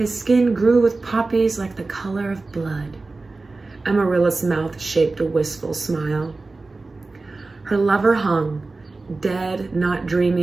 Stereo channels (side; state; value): left; quieter; 3.5 dB